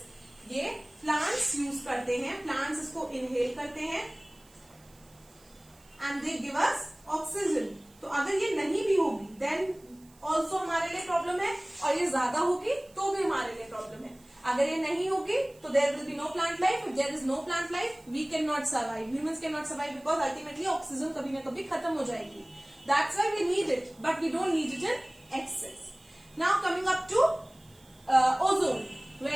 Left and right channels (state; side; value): noise; right; hiss, 28 dB below the sound